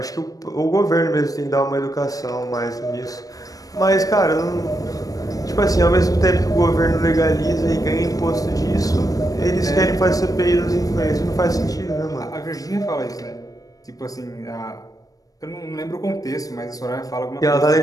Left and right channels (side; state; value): right; late; 0.17 ms